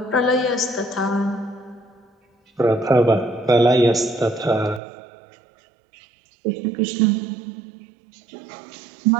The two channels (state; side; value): drops out; left; at 4.8 s